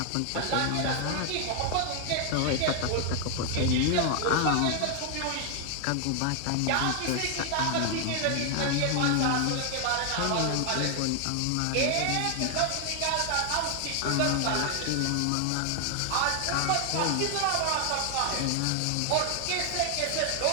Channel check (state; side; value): different; both; correlation 0.00